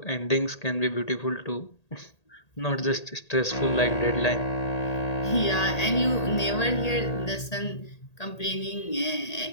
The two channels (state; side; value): late; right; 1.8 ms